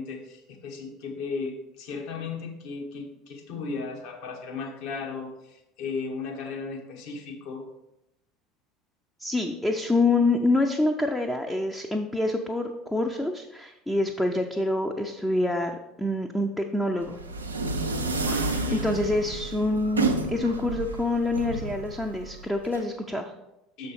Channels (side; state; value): both; normal; correlation 0.59